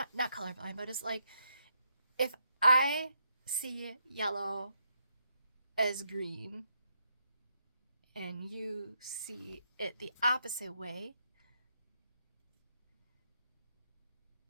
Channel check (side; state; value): both; inverted; correlation -0.79